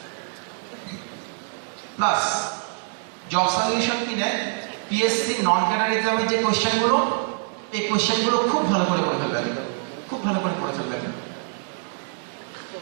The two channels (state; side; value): silent; left; 57 dB below the other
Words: প্লাস জব সলিউশন কিনে পিএসসি নন ক্যাডার এক্সামের যে কোশ্চেনগুলো, এই কোশ্চেনগুলো খুব ভালো করে পড়ে ফেলবেন, খুব ভালো করে পড়ে ফেলবেন।